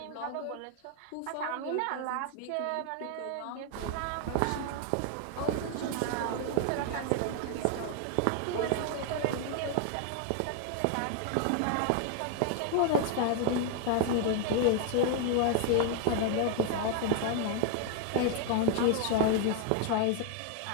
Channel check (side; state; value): both; different; correlation 0.00